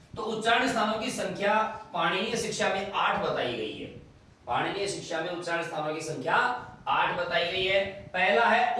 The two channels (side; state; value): both; identical; correlation 1.00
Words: तो उच्चारण स्थानों की संख्या पाणिनीय शिक्षा में 8 बताई गई है। पाणिनीय शिक्षा में उच्चारण स्थानों की संख्या 8 बताई गई है। पहला है